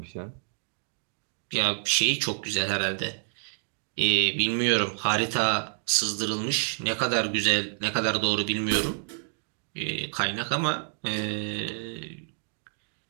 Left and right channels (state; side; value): silent; left; 59 dB below the other